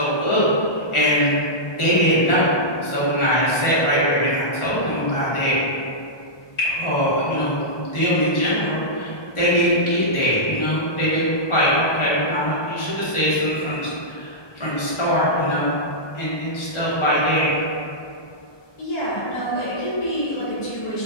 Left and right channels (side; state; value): right; late; 1.2 ms